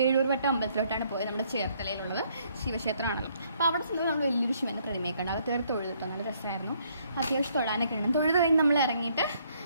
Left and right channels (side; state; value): both; inverted; correlation -0.68